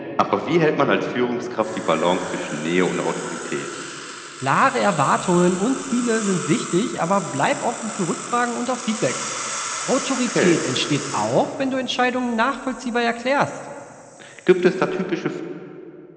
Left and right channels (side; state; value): both; identical; correlation 1.00